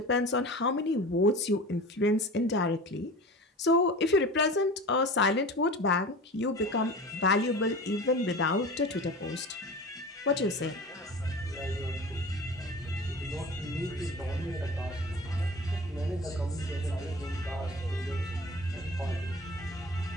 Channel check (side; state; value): both; normal; correlation 0.35